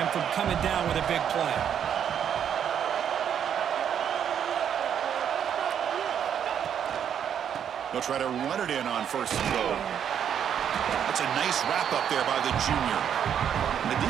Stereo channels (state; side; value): quieter; left; 8.7 dB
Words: from coming down with a big play. They'll try to run it in on first and goal. That's a nice wrap up there by the junior. And the